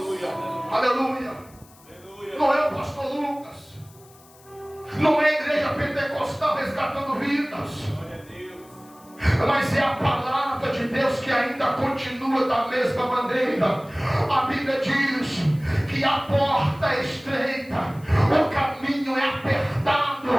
Aleluia. Não é o pastor Lucas, não é a igreja pentecostal resgatando vidas, Glória a Deus. mas é a palavra de Deus que ainda continua da mesma maneira. A Bíblia diz que a porta é estreita, o caminho é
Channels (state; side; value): noise; left; hiss, 26 dB below the sound